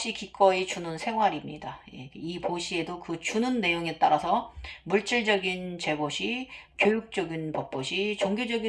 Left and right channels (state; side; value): identical; both; correlation 1.00